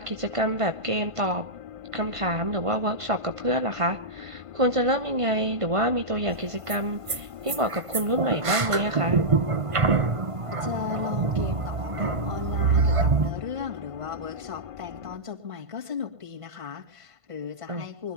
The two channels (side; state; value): left; late; 1.5 ms